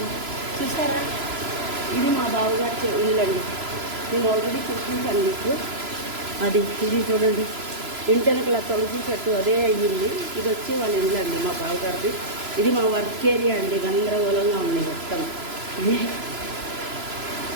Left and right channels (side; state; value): left; late; 3.0 ms